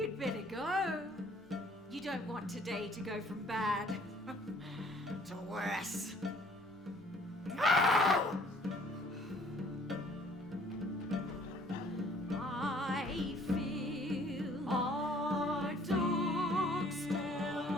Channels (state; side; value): normal; both; correlation 0.57